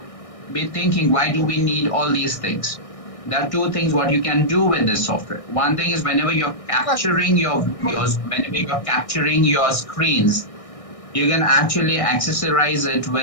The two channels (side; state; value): right; late; 1.6 ms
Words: be thinking, why do we need all these things? There are two things what you can do with this software. One thing is whenever you're capturing your videos, whenever you're capturing your screens, you can actually accessorize it